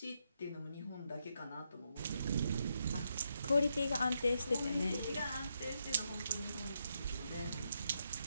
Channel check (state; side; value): inverted; both; correlation -0.80